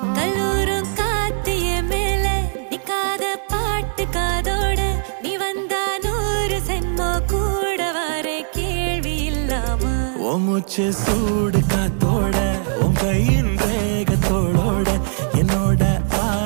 கல்லூரும் காத்திய மேல நிக்காத பாட்டு காதோட நீ வந்தா 100 சென்மோ கூட வர கேள்வி இல்லாம மூச்சு சூடு காத்தோட உன் கையின் ரேகத்தோளோட என்னோட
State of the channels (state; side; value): silent; left; digital silence